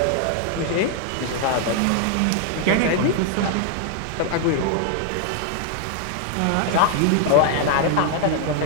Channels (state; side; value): different; both; correlation 0.00